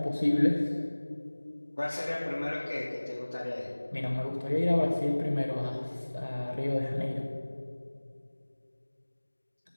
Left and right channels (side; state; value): both; inverted; correlation -1.00